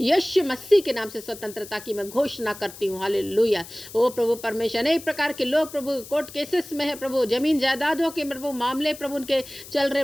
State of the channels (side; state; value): left; noise; hiss, 16 dB below the sound